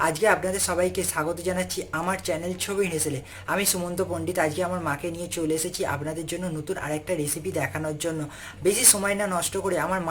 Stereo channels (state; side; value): identical; both; correlation 1.00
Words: আজকে আপনাদের সবাইকে স্বাগত জানাচ্ছি আমার চ্যানেল ছবির হেসেলে। আমি সুমন্ত পণ্ডিত আজকে আমার মাকে নিয়ে চলে এসেছি আপনাদের জন্য নতুন আরেকটা রেসিপি দেখানোর জন্য। বেশি সময় না নষ্ট করে আমার